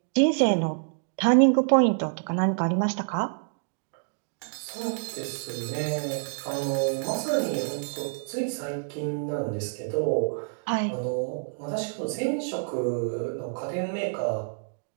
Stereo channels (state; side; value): silent; left; digital silence